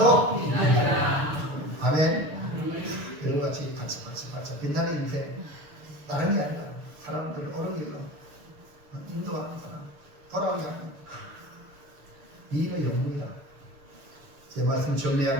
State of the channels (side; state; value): left; late; 6.8 ms